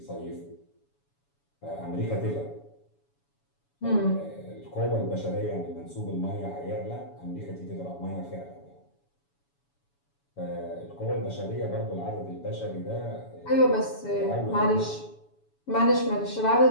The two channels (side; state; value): right; late; 7.1 ms